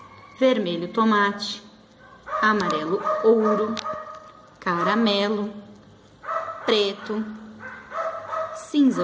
vermelho tomate, amarelo ouro, caramelo, preto,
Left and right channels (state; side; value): identical; both; correlation 1.00